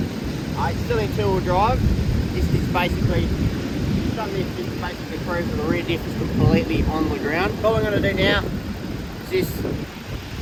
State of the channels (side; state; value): both; identical; correlation 1.00